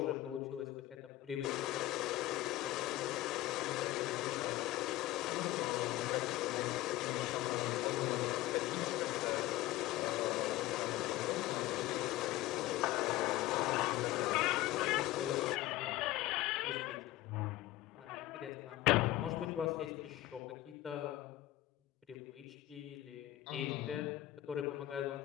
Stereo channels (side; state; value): right; quieter; 16.3 dB